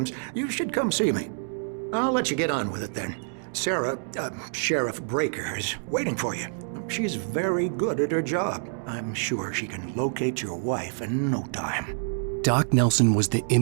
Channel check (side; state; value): left; silent; digital silence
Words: you should come see me. I'll let you get on with it then. Sarah, Sheriff Breaker, is waiting for you. She's very good at her job. I'm sure she can locate your wife in no time. Doc Nelson was the